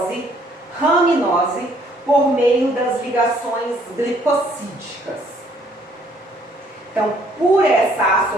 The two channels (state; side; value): normal; both; correlation 0.63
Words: raminose, por meio das ligações glicosídicas. Então, por essa